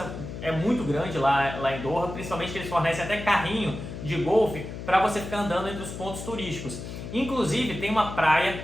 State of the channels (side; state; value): left; noise; hum, 9 dB below the sound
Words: é muito grande lá em Doha, principalmente que eles fornecem até carrinho de golfe para você ficar andando entre os pontos turísticos. Inclusive tem uma praia,